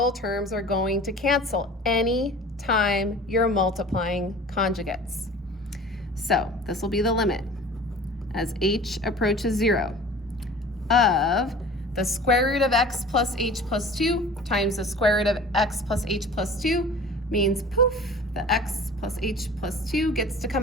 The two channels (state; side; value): normal; both; correlation 0.42